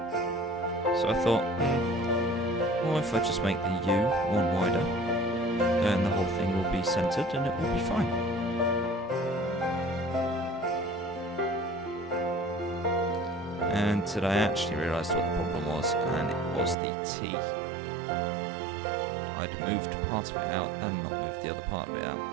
So I thought, well, if I just make the U one wider, then the whole thing will be centered and it will be fine. And I actually realised what the problem was, and it was the T. I'd moved part of it out and not moved the other part of it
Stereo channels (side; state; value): left; drops out; at 16.8 s